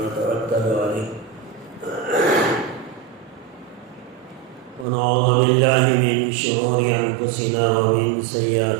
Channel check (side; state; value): left; drops out; at 4.9 s